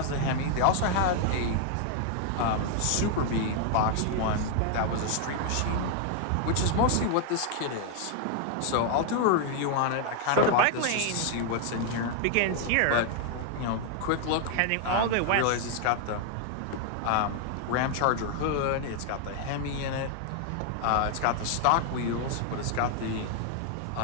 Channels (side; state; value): both; different; correlation 0.00